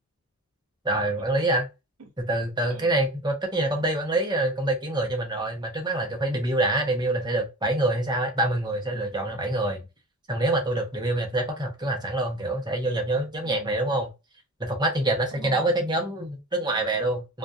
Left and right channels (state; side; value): normal; both; correlation 0.37